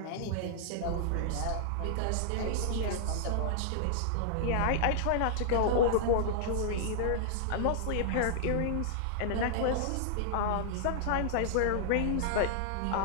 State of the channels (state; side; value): different; both; correlation -0.01